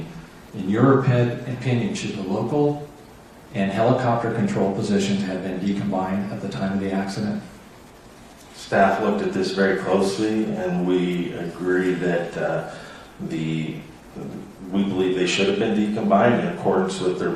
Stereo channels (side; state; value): both; identical; correlation 1.00